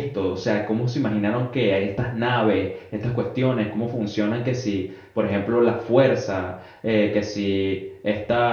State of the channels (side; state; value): both; identical; correlation 1.00